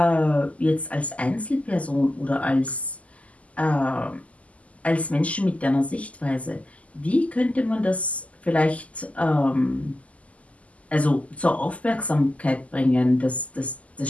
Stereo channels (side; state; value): right; late; 0.069 ms